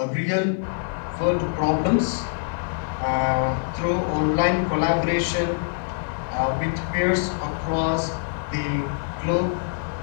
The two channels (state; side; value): silent; right; digital silence